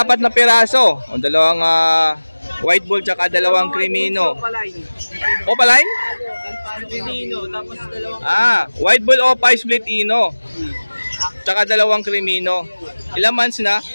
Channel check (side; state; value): both; inverted; correlation -1.00